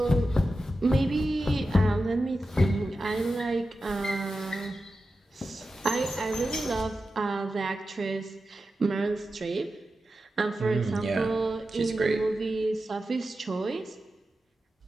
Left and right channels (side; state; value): both; normal; correlation 0.92